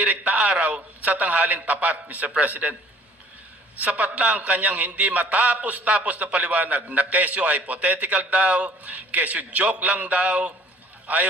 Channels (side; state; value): both; normal; correlation 0.53